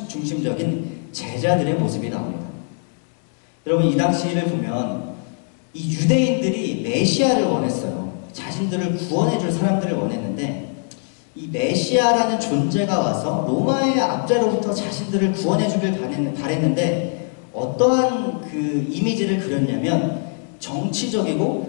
제자들의 모습이 나옵니다. 여러분 이 당시를 보면 이 유대인들이 메시아를 원했어요. 자신들을 구원해줄 사람들을 원했는데, 이 메시아라는 존재가 와서 로마의 압제로부터 자신들을 구원해주길 바랬는데 어떠한 그 이미지를 그렸냐면,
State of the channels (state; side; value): silent; right; 55 dB below the other